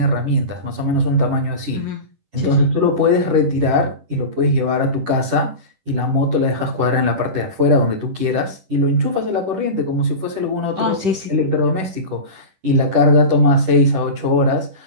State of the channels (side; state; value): left; late; 10 ms